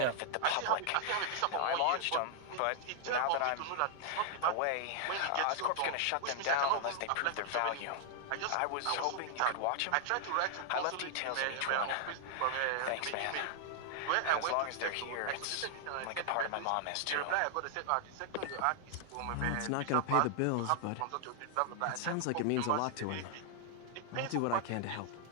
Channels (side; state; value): both; different; correlation -0.01